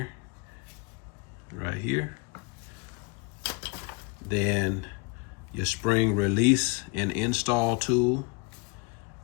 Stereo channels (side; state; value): right; quieter; 30.4 dB